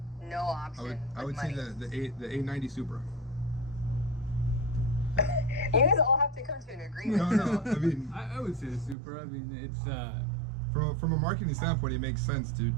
option. I would with say money. the A90 Supra. You guys all have to come to an agreement. No. I mean, I would say the super. I mean, it's from a marketing standpoint, it makes sense to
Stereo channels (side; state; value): left; drops out; at 9.0 s